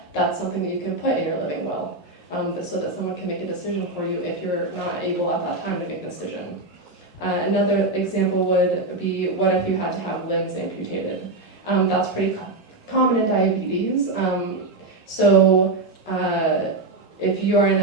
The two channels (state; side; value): quieter; left; 3.0 dB